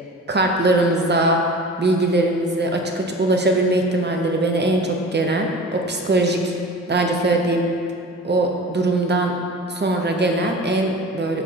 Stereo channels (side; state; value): both; normal; correlation 0.38